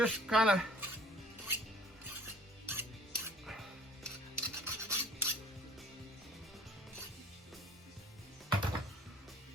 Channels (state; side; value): normal; both; correlation 0.51